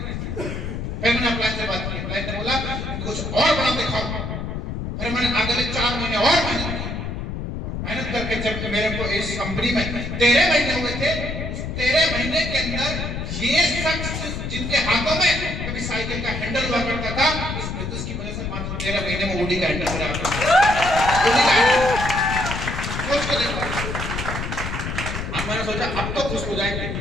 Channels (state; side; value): noise; left; rumble, 4 dB below the sound